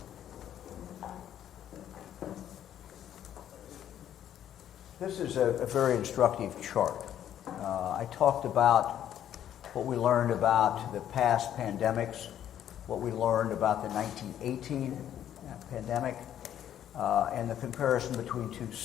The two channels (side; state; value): right; quieter; 10.7 dB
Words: This is a very instructive chart. I talked about what we learned about the past pandemics, what we learned about the 1918 pandemic, and the comparison between two